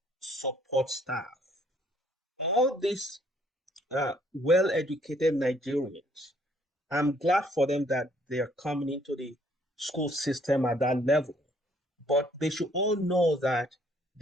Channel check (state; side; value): normal; both; correlation 0.64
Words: support staff. All these well-educated Nigerians, I'm glad for them that they are coming into the school system at that level. But they should all know that